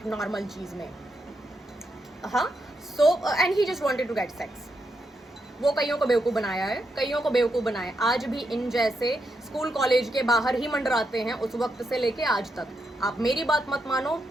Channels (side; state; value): both; normal; correlation 0.82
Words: नॉर्मल चीज में, हाँ। So and he just wanted to get sex. वो कईयों को बेवकूफ़ बनाया है, कईयों को बेवकूफ़ बनाया है। आज भी इन जैसे स्कूल कॉलेज के बाहर ही मंडराते हैं उस वक्त से लेके आज तक। आप मेरी बात मत मानो,